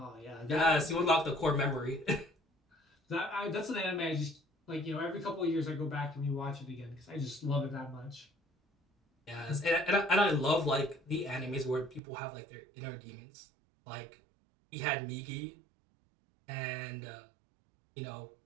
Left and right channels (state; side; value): drops out; left; at 12.0 s